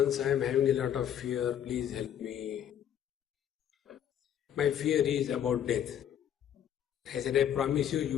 I am having a lot of fear, please help me. My fear is about death. I said, I promise you, you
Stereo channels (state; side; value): quieter; right; 9.8 dB